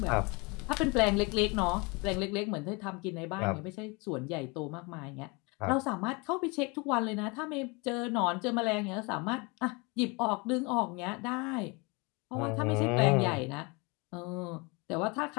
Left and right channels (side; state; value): right; quieter; 28.6 dB